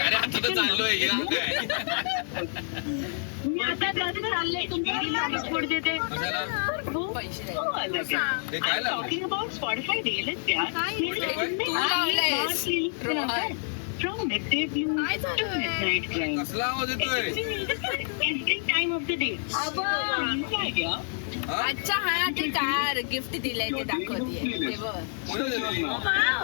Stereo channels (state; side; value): silent; right; 59 dB below the other